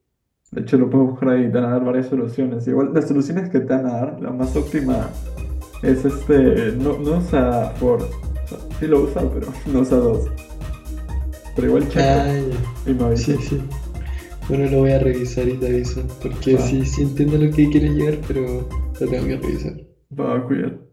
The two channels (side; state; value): both; identical; correlation 1.00